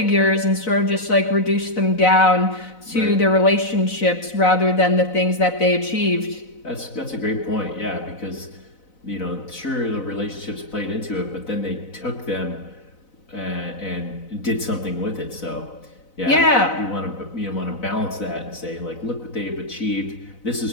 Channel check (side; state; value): right; late; 4.0 ms